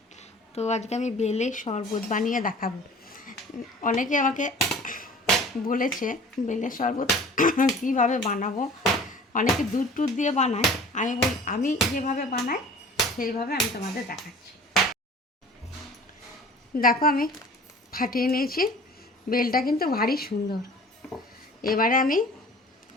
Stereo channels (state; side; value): normal; both; correlation 0.45